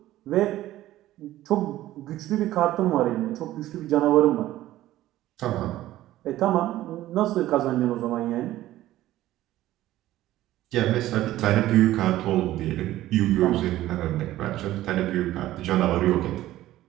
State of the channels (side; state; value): left; quieter; 14.8 dB